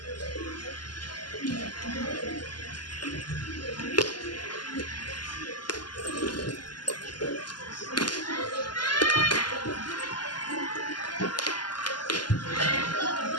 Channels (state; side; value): late; right; 0.71 ms